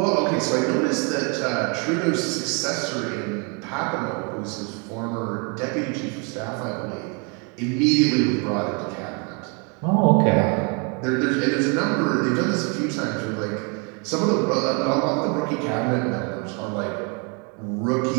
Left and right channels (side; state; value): left; quieter; 34.6 dB